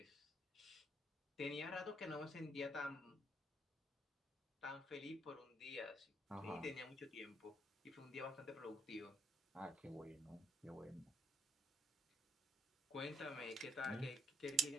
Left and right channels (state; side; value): normal; both; correlation 0.72